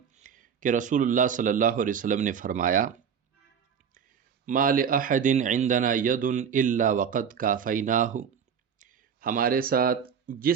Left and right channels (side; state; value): left; quieter; 7.3 dB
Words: کہ رسول اللہ صلی اللہ علیہ وسلم نے فرمایا ما لأحد عندنا ید الا وقد کافیناہ، ہمارے ساتھ